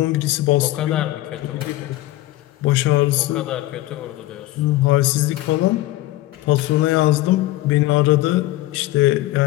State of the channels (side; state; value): right; quieter; 16.6 dB